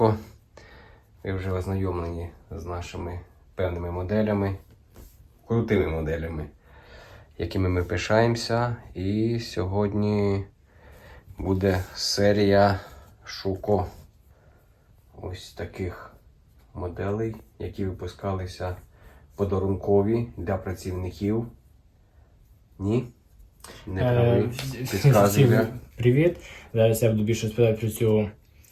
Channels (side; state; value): both; identical; correlation 1.00